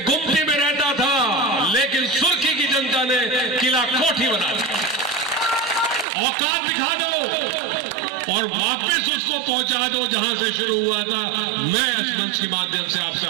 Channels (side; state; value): left; drops out; at 6.1 s